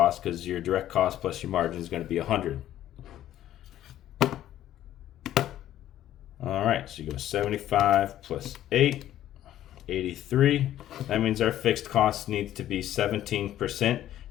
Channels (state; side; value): quieter; right; 12.5 dB